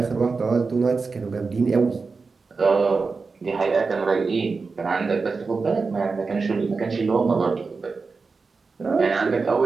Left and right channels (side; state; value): left; quieter; 4.4 dB